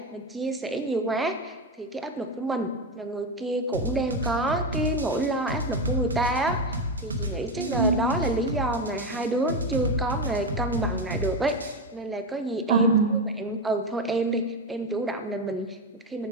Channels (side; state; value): both; normal; correlation 0.13